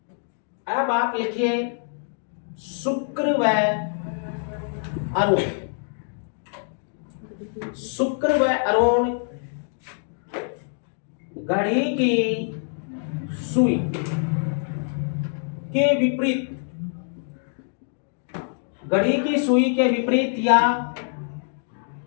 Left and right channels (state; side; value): silent; right; digital silence